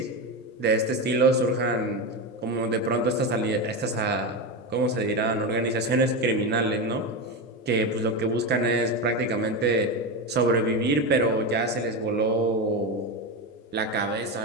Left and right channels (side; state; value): both; normal; correlation 0.16